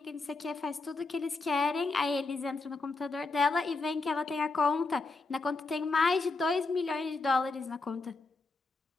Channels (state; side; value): quieter; right; 3.7 dB